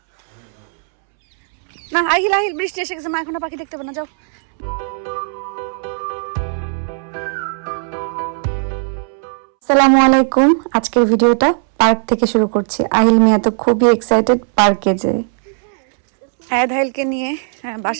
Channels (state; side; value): silent; left; 68 dB below the other